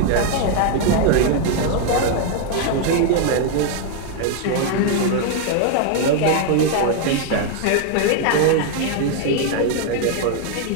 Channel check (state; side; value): different; both; correlation 0.00